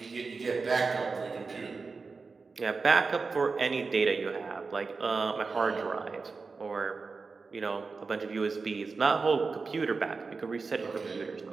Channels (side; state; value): left; quieter; 4.4 dB